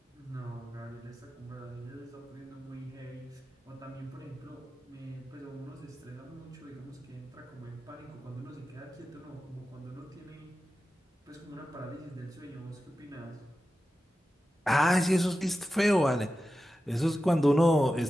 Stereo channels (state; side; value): normal; both; correlation 0.93